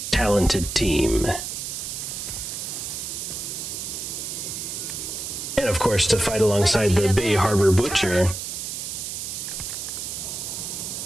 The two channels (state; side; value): noise; right; hiss, 5 dB below the sound